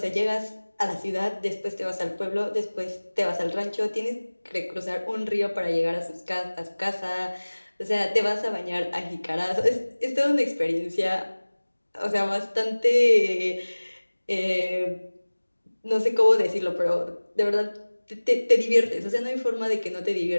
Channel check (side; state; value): both; inverted; correlation -1.00